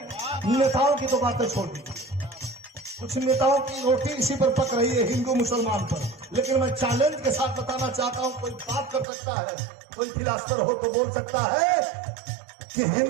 नेताओं की तो बातें छोड़ दी, कुछ नेताओं की रोटी इसी पर पक रही है, हिंदू मुसलमान पर। लेकिन मैं चैलेंज के साथ बताना चाहता हूं, कोई बात कर सकता है, कोई फिलासफर हो तो बोल सकता है कि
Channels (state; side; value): drops out; left; at 9.1 s